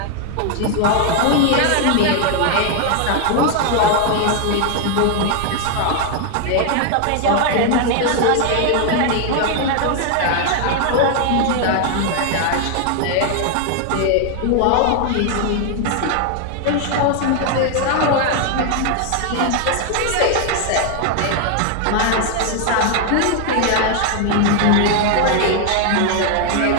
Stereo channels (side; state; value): both; different; correlation 0.00